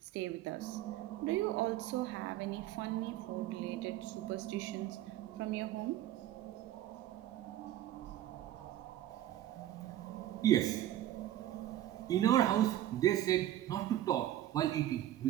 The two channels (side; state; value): left; quieter; 13.2 dB